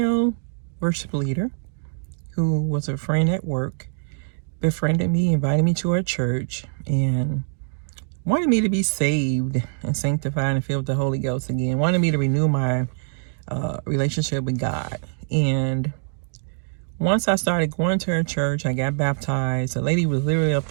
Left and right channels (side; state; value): left; silent; digital silence